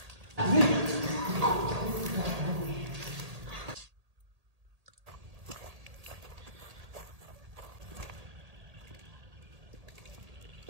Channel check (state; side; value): late; left; 1.8 ms